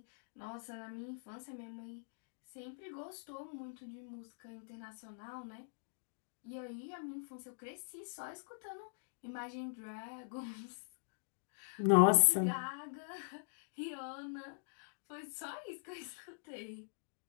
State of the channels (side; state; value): right; silent; digital silence